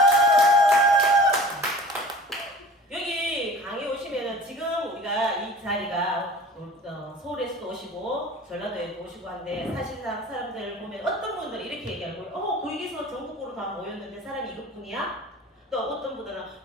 여기 강의 오시면은 지금 우리가 이 자리가 서울에서도 오시고 전라도에도 오시고 한데 사실상 사람들 보면 어떤 분들이 이렇게 얘기하고 거기서 전국구로 다 모였는데 사람이 이것뿐이야? 또 어떤 분들은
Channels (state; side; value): normal; both; correlation 0.42